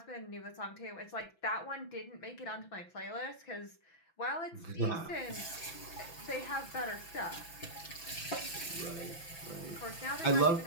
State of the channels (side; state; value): right; late; 6.0 ms